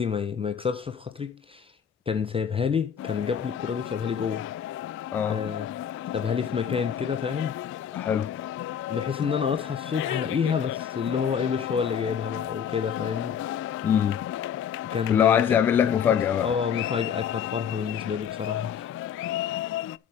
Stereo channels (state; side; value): quieter; right; 7.8 dB